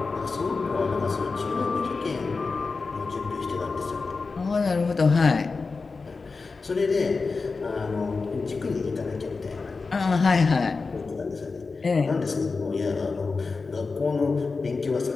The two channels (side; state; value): right; quieter; 4.3 dB